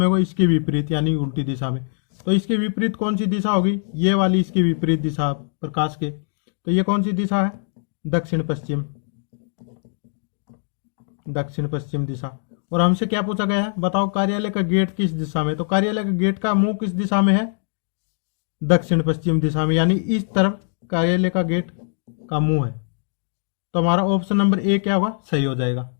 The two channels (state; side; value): silent; right; digital silence